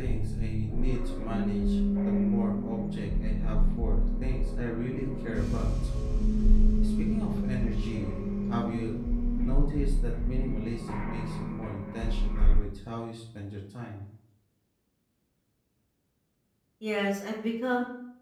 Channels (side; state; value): both; identical; correlation 1.00